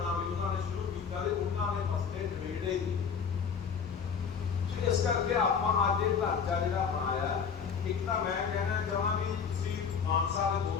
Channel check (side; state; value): right; quieter; 6.5 dB